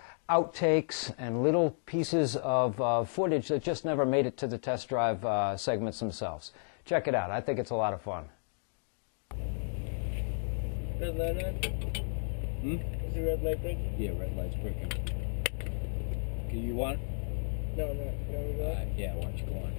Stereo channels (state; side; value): silent; right; digital silence